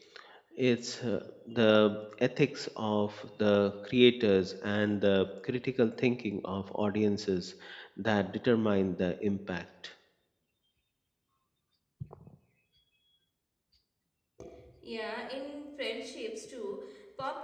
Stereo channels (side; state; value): both; identical; correlation 1.00